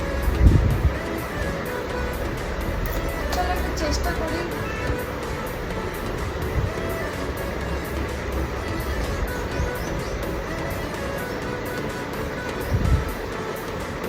চলো একটু চেষ্টা করি।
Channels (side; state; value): both; identical; correlation 1.00